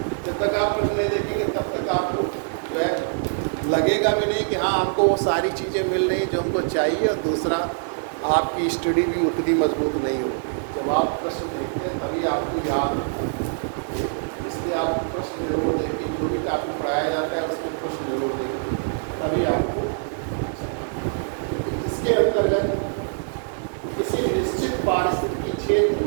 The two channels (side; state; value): left; silent; 63 dB below the other